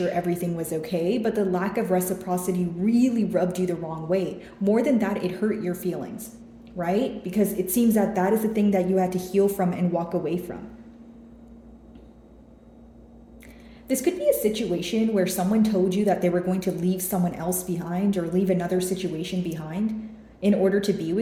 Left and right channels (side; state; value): both; identical; correlation 1.00